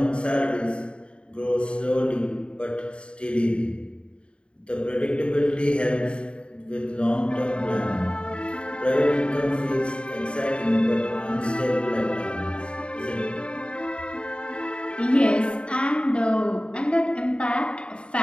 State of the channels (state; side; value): late; right; 0.055 ms